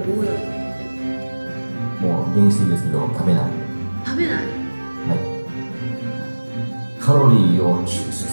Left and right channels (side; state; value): both; inverted; correlation -1.00